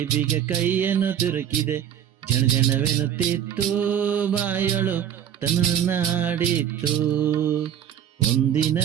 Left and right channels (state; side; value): quieter; left; 9.7 dB